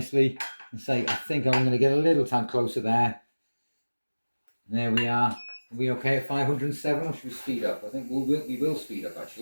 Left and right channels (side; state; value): both; inverted; correlation -1.00